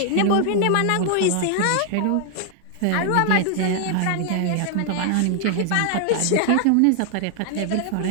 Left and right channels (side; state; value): both; different; correlation 0.00